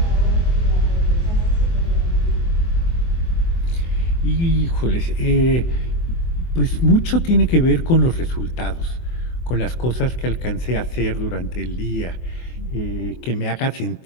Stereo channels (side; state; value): right; late; 24 ms